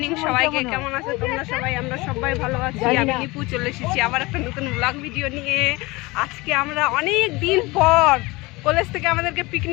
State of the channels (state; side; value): quieter; right; 22.9 dB